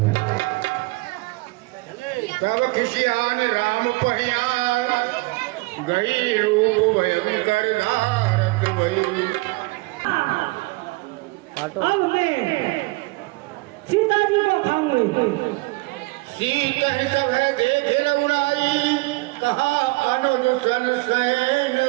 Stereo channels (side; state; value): left; quieter; 24.1 dB